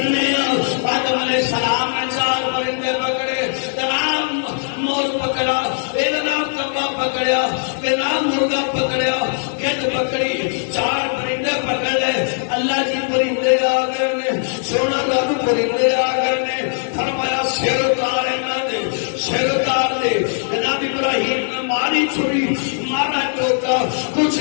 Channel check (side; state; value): right; silent; 66 dB below the other